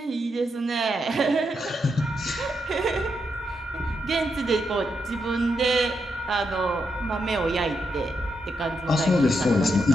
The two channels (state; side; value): normal; both; correlation 0.82